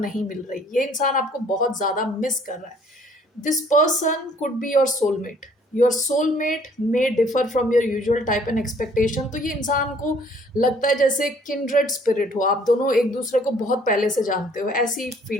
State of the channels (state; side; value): normal; both; correlation 0.59